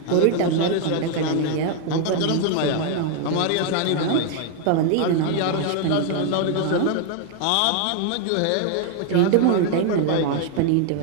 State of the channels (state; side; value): different; both; correlation 0.00